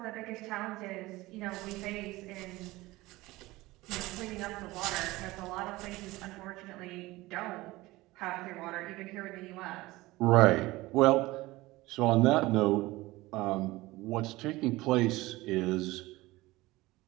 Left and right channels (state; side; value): quieter; left; 19.6 dB